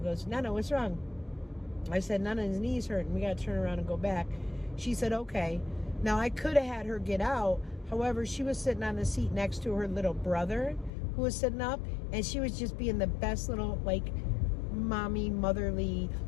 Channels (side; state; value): right; drops out; at 10.9 s